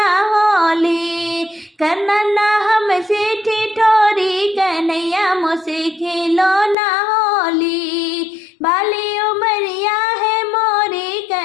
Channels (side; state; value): right; drops out; at 6.8 s